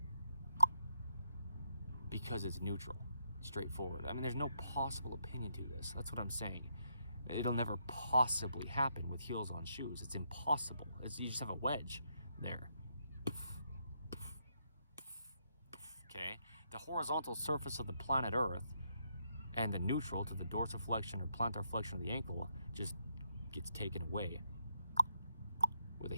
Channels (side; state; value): both; inverted; correlation -0.77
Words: because it's neutral, straightforward. I mean, there's no possible opinion to this. That's what I'm saying. It'll never possibly happen with heels on shoes. It's impossible. You just have a wedge there. Okay? The horizontal surface of the planet Earth and the neutral to the dorsiflexion or plantar flexion of the ankle just gets taken away with a